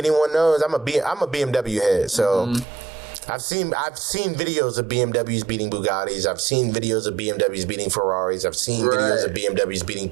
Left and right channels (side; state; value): left; drops out; at 2.7 s